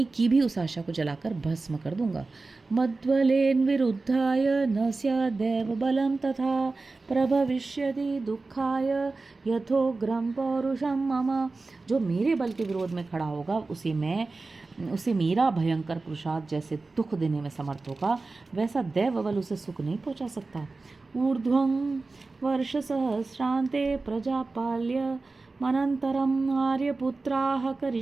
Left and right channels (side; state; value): left; quieter; 3.6 dB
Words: की भी उस आशा को जलाकर भस्म कर दूंगा। मद्बलेन विरुद्धाय न स्यादेव बलम तथा प्रभविष्यति दुःखाय यथोग्रम पौरुषम मम। जो मेरे बल के विरोध में खड़ा होगा उसे मेरा भयंकर पुरुषार्थ जैसे दुख देने में समर्थ होगा, वैसा दैव बल उसे सुख नहीं पहुंचा सकता। ऊर्ध्वं वर्ष सहस्रांते प्रजापाल्य मनंतरम आर्यपुत्राः